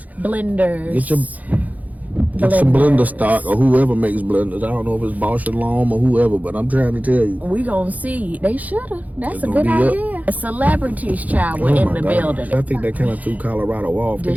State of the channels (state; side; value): late; left; 0.077 ms